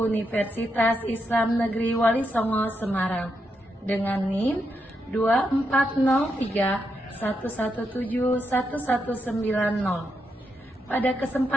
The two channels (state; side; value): normal; both; correlation 0.83